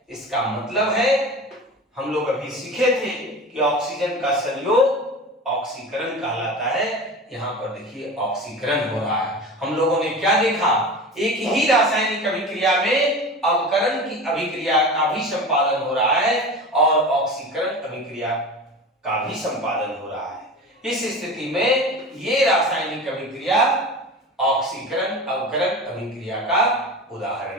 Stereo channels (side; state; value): both; normal; correlation 0.32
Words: इसका मतलब है हम लोग अभी सीखे थे कि ऑक्सीजन का संयोग ऑक्सीकरण कहलाता है। यहां पर देखिए ऑक्सीकरण हो रहा है। हम लोगों ने क्या देखा, एक ही रासायनिक अभिक्रिया में अवकरण की अभिक्रिया का भी संपादन हो रहा है और ऑक्सीकरण अभिक्रिया का भी संपादन हो रहा है। इस स्थिति में ये रासायनिक अभिक्रिया ऑक्सीकरण अवकरण अभिक्रिया का